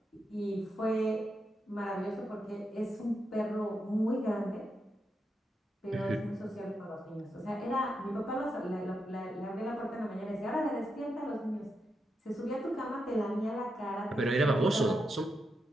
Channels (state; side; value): normal; both; correlation 0.85